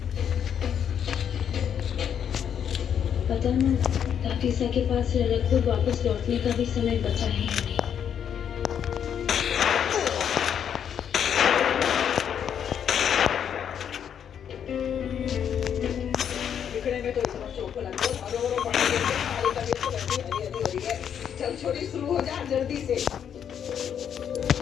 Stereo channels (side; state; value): right; quieter; 8.6 dB